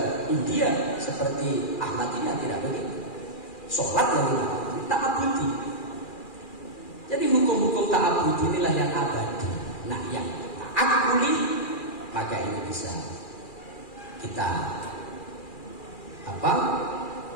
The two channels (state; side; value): late; right; 2.4 ms